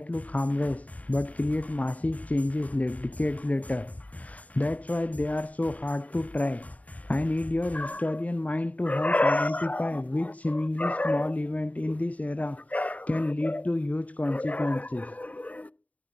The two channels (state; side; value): late; right; 0.070 ms